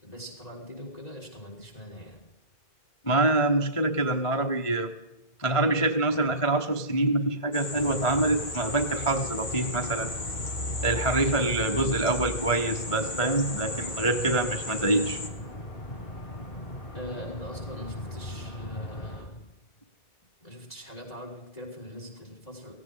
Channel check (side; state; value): right; late; 1.5 ms